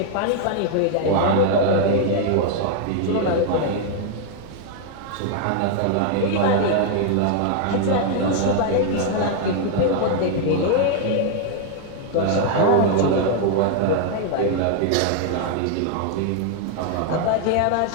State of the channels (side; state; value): both; different; correlation 0.00